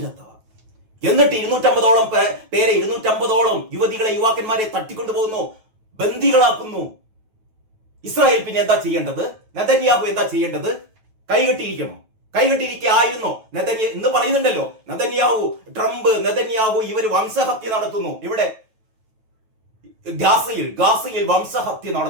എന്നിട്ട് 250-ഓളം പേരെ, 250-ഓളം യുവതികളെ, യുവാക്കന്മാരെ തട്ടിക്കൊണ്ടു പോകുന്നു, ബന്ദികളാക്കുന്നു. ഇസ്രായേൽ പിന്നെ എന്താ ചെയ്യേണ്ടത്? നെതന്യാഹു എന്താ ചെയ്യേണ്ടത്? കൈകെട്ടിരിക്കുകയായിരുന്നോ എന്ന് പറയുന്നുണ്ടല്ലോ. ട്രംപ്, നെതന്യാഹു ഇവർ വംശഹത്യ നടത്തുന്നു. ഇവിടെ ഗാസയിൽ വംശഹത്യ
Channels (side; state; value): left; late; 9.2 ms